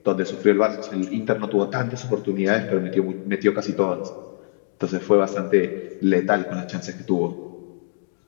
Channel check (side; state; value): right; silent; digital silence